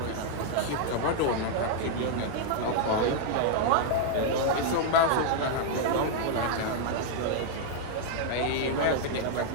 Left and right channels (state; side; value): different; both; correlation 0.00